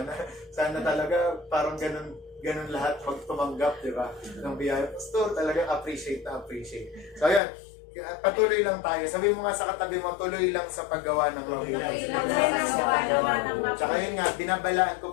talaga, parang ganun lahat magtumanggap, diba? Ng biyaya, Pastor, talagang appreciate. So ayan, patuloy lang tayo. Sabi mo nga sa katabi mo, tuloy lang sa paggawa ng mabuti. Tsaka yun nga, binabalaan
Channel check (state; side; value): drops out; right; at 7.4 s